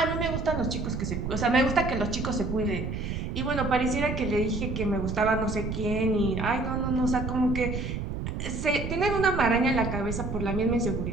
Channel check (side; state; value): right; noise; rumble, 4 dB below the sound